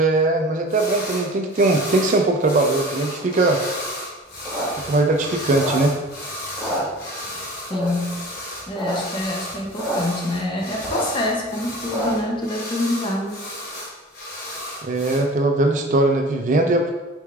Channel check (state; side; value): normal; both; correlation 0.40